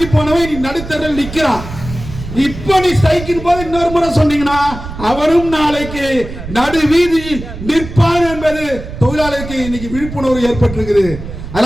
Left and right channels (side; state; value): right; noise; rumble, 11 dB below the sound